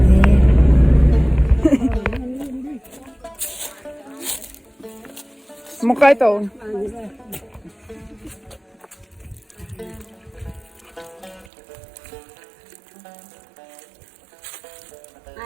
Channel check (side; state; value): left; drops out; at 11.5 s